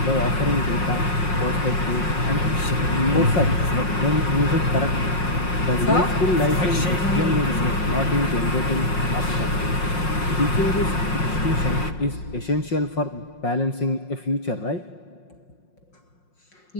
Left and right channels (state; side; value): late; right; 5.6 ms